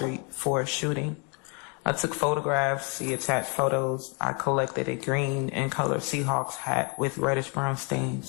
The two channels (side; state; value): right; quieter; 34.8 dB